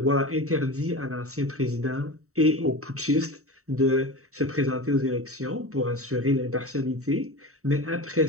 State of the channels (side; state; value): left; late; 0.64 ms